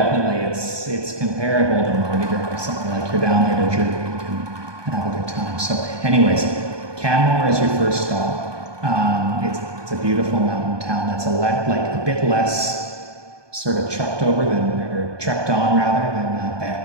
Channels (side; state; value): left; late; 1.2 ms